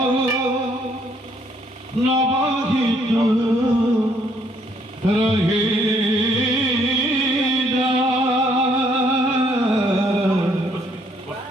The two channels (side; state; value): both; normal; correlation 0.68